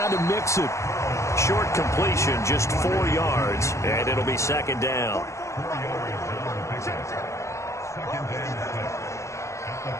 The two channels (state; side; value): late; right; 0.14 ms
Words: to Mixon. Short completion, just 4 yards, and it'll be 2nd down.